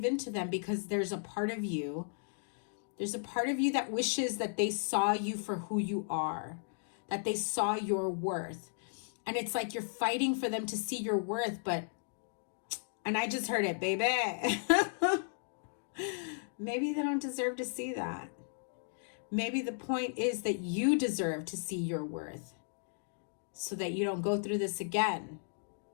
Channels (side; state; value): right; silent; digital silence